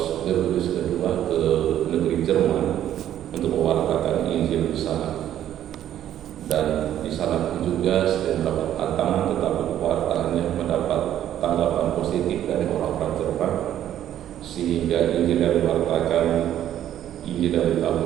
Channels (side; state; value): left; quieter; 11.4 dB